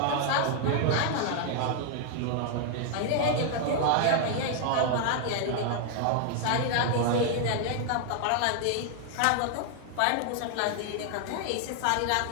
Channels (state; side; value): different; both; correlation 0.00